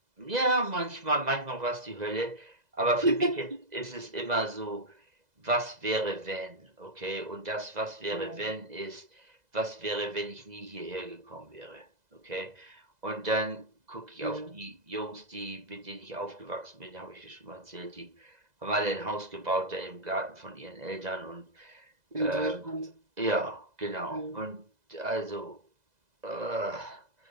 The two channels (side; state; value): left; late; 2.0 ms